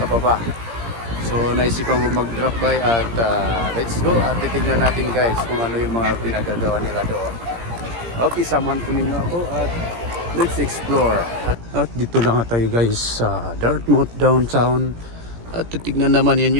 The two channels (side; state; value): left; late; 17 ms